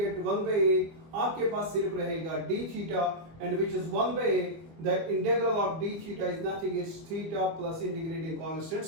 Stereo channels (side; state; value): left; late; 25 ms